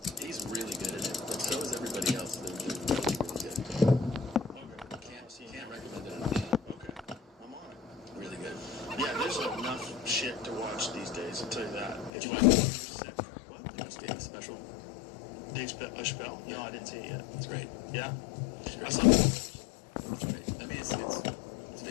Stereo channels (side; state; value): right; drops out; at 12.1 s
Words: he's really good at it, but so is everybody else. They're really, really good. Okay. Can't recommend it enough. Okay. I'm on it. Really good. Yeah, there's enough shit to watch these days, I'll tell you that. Did you like what? Did you watch Dave's special? Dave Chappelle? No, Yeah. I didn't see it yet. It's great. Yeah? It's I great. saw it. It's great. I mean, it's